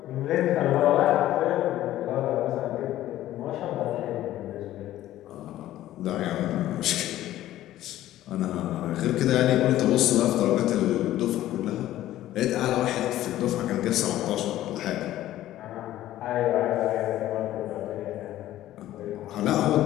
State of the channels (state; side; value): quieter; right; 14.0 dB